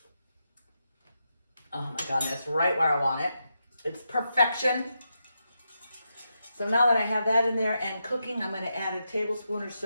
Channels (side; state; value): both; inverted; correlation -0.85